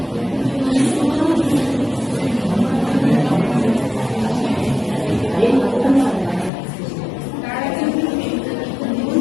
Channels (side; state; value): right; drops out; at 6.5 s